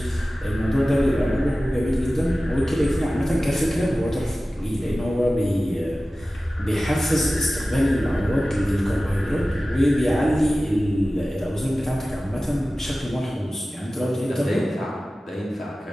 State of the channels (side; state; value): both; normal; correlation 0.96